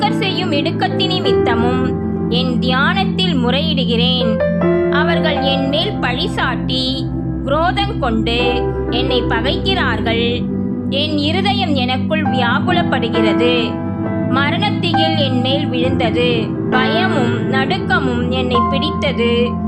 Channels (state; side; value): identical; both; correlation 1.00